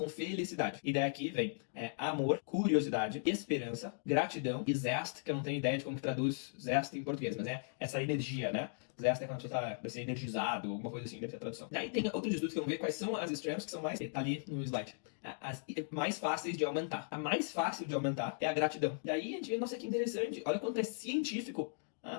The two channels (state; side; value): silent; right; digital silence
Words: felicidade. E daí aqui vem amor, curiosidade, esperança, gratidão e zest, que eu não tenho ideia de como que traduz zest em português, mas é essa energia, né? Zest é quando você tá energizado, alguma coisa assim, deve ser a tradução. Daí tem outros estudos que vão ver quais são as strengths que são mais... Tá ali no slide. As mais fáceis de aumentar. A mais fácil de aumentar é a gratidão. Daí a gente vê, nossa, que interessante. Olha quanto é científico